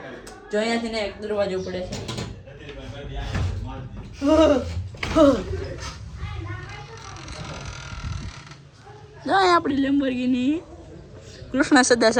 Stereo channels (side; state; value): both; identical; correlation 1.00